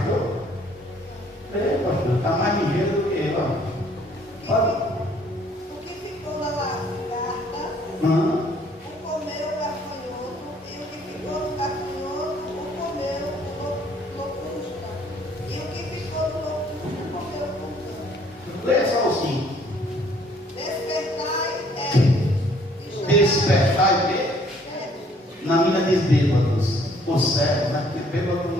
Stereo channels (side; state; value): both; normal; correlation 0.61